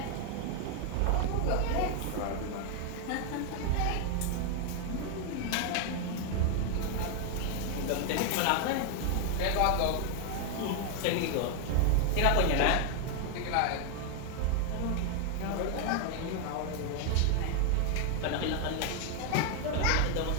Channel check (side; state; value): both; different; correlation 0.01